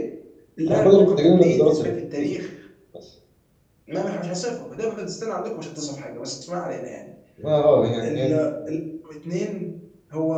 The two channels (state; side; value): identical; both; correlation 1.00